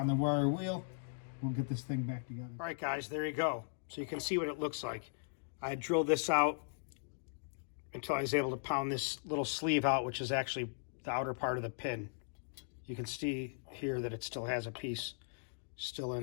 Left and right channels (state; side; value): silent; right; digital silence